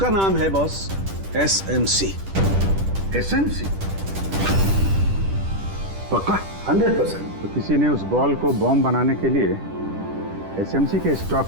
नाम है बॉस SMC। SMC? पक्का? 100%। तो किसी ने उस बॉल को बॉम्ब बनाने के लिए SMC के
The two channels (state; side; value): late; left; 10 ms